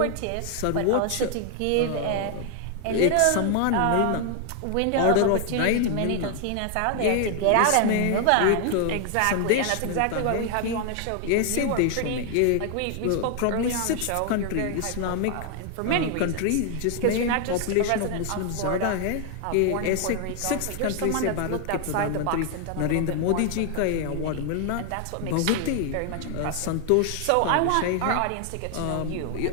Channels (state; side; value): different; both; correlation 0.00